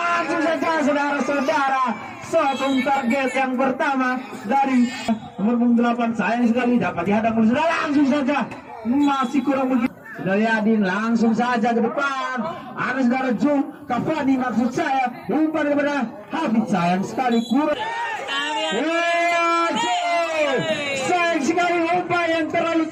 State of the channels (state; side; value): identical; both; correlation 1.00